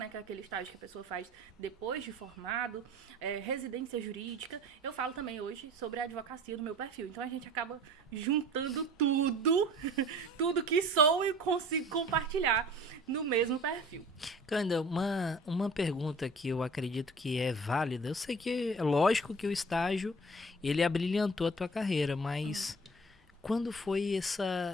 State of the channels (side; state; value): both; normal; correlation 0.44